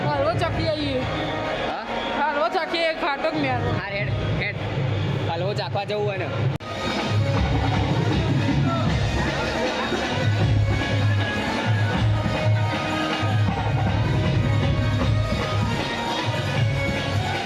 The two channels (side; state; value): both; identical; correlation 1.00